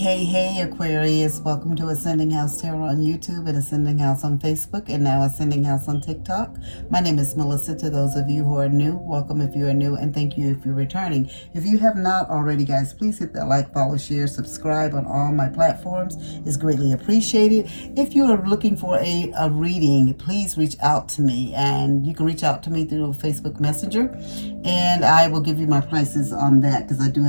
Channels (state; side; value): inverted; both; correlation -1.00